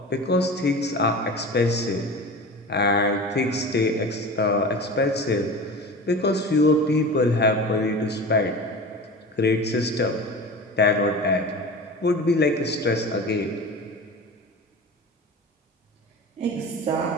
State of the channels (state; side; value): normal; both; correlation 0.33